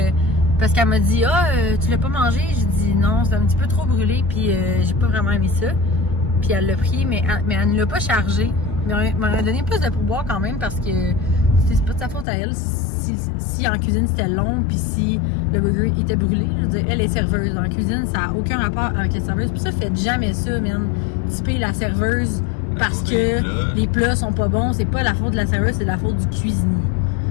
parce qu'elle m'a dit tu l'as pas mangé, j'ai dit non, c'est un petit peu trop brûlé, puis j'ai pas vraiment aimé ça, puis elle l'a pris, mais elle ne l'a pas chargé, mais elle m'a donné plus de pourboire quand même parce que c'est pas de sa faute à elle si en cuisine c'était long, puis si le burger était brûlé. Je veux dire, elle est serveuse en cuisine, ça a aucun rapport avec la serveuse, puis ça, faites jamais ça, man, typer la serveuse parce que les plats sont pas bons. C'est pas la faute de la serveuse, c'est la faute du cuisinier.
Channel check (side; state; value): right; drops out; at 12.2 s